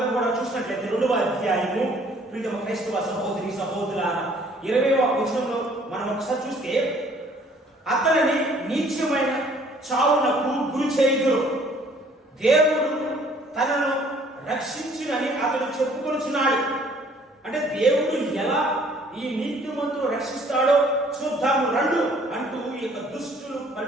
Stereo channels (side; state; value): both; normal; correlation 0.58